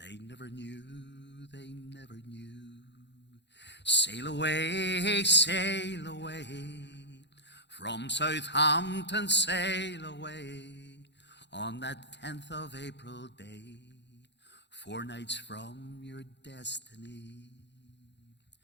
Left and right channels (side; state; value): right; late; 0.51 ms